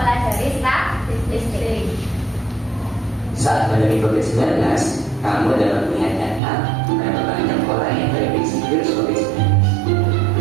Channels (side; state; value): left; drops out; at 6.4 s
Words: statistik. Saat pandemi COVID-19, kamu dapat melihat data berapa banyak orang yang terinfeksi virus COVID-19.